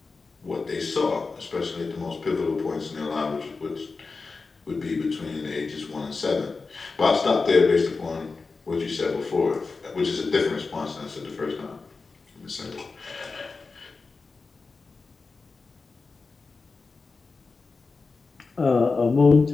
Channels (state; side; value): quieter; right; 4.2 dB